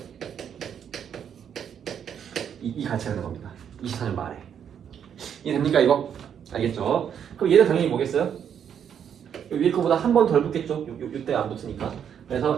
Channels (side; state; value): left; quieter; 8.4 dB